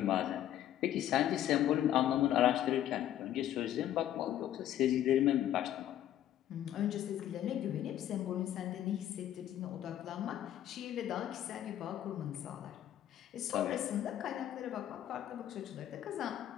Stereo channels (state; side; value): quieter; right; 11.8 dB